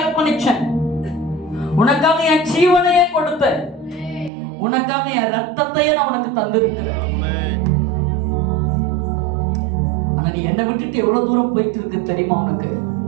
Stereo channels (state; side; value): drops out; left; at 4.3 s